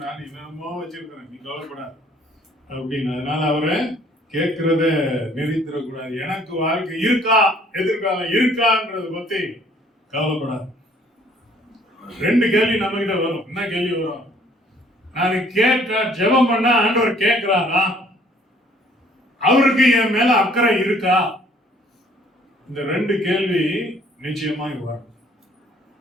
நான் என்னமோ வச்சிருக்கிறேன், நீ கவலைப்படாது அப்படின்னு. அதனால அவரை கேட்கிறத நிறுத்திடக்கூடாது. எனக்கு வாழ்க்கை இருக்கா, எதிர்காலம் இருக்கான்றத பத்தி கவலைப்படாது. 2 கேள்வி நம்ம கிட்ட வரும். என்ன கேள்வி வரும்? நான் கேட்டா ஜெபம் பண்ணா ஆண்டவர் கேட்கிறாரா, அவருக்கு என் மேல அக்கறை இருக்கா? இந்த 2 கேள்வி நிச்சயமா வரும்.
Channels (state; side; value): normal; both; correlation 0.59